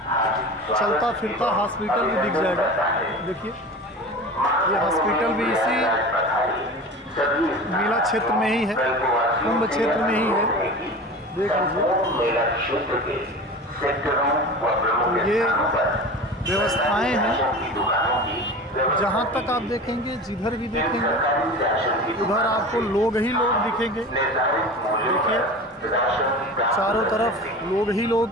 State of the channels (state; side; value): normal; both; correlation 0.34